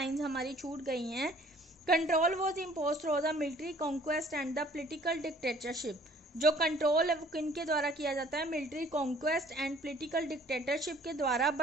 हमारी छूट गई हैं। Control was imposed through the military conquest and the political dictatorship. जो कंट्रोल है वो किनके द्वारा किया जाता है? Military conquest and political dictatorship के द्वारा।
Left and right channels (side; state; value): both; normal; correlation 0.55